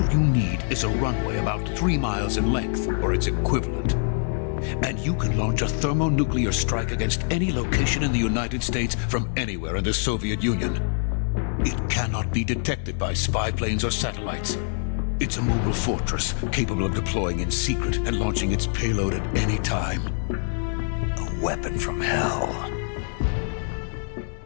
you need is a runway about 3 miles in length, or its equivalent. And you can launch a thermonuclear strike against any location in the United States from anywhere in the Soviet Union. It cannot be detected by spy planes or satellites. It's a mobile fortress capable of deploying in secret and launching its payload at any time. A weapon from hell.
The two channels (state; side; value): silent; right; digital silence